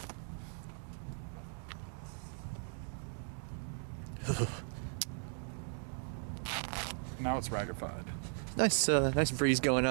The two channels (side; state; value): left; silent; 53 dB below the other